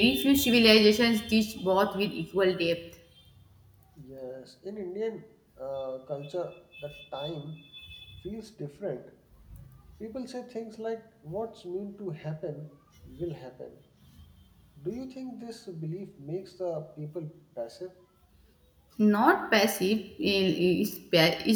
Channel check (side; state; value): both; identical; correlation 1.00